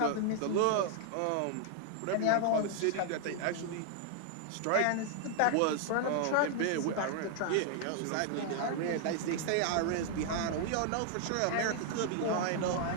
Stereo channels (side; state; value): both; different; correlation 0.00